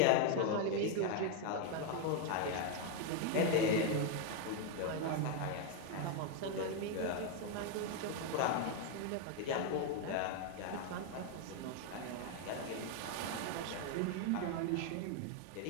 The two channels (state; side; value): different; both; correlation 0.01